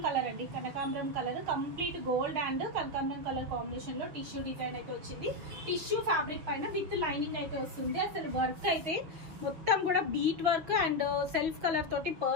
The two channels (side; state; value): left; late; 6.2 ms